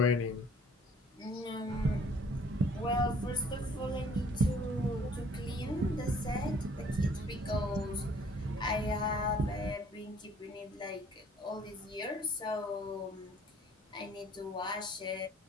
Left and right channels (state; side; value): normal; both; correlation 0.57